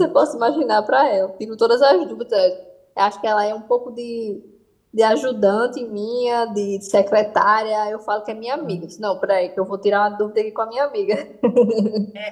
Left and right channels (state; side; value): identical; both; correlation 1.00